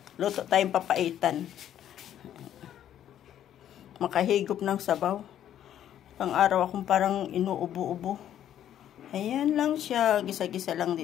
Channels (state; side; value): quieter; right; 10.8 dB